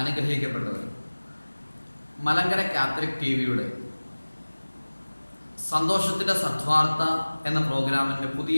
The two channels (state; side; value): inverted; both; correlation -1.00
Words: മലങ്കര കാത്തലിക് ടിവിയുടെ സന്തോഷത്തിൻ്റെ സദ്വാർത്ത എന്ന പ്രോഗ്രാമിൻ്റെ